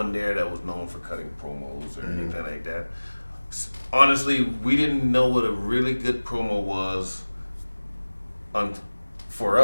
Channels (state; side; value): inverted; both; correlation -1.00